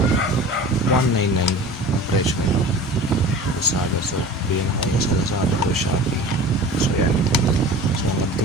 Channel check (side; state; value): both; normal; correlation 0.39